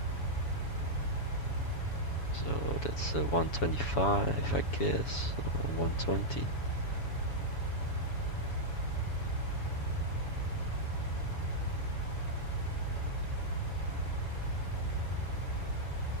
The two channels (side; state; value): right; late; 7.1 ms